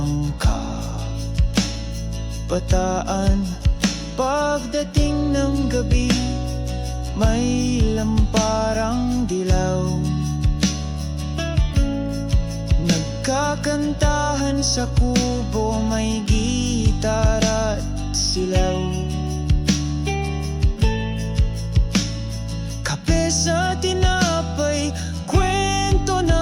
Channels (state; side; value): identical; both; correlation 1.00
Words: kabataan. Pagdating ng gabi, may lamparang dilaw. Nagkakantahan sa kubo, may gitara at silaw. Kape sa tinapay, kwento